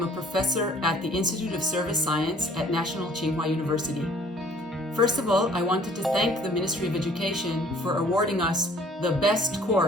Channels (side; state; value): both; normal; correlation 0.56